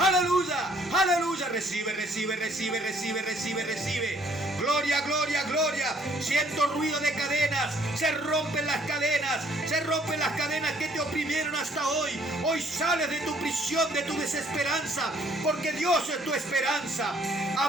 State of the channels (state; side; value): normal; both; correlation 0.62